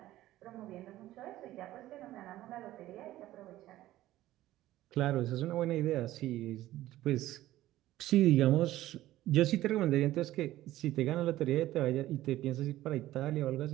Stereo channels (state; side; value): quieter; left; 15.1 dB